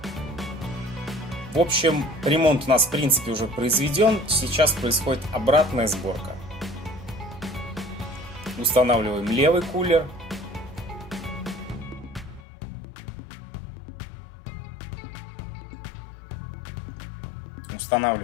В общем, ремонт у нас в принципе уже произведен. Сейчас происходит обратная сборка. Устанавливаем левый кулер.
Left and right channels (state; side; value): drops out; right; at 12.4 s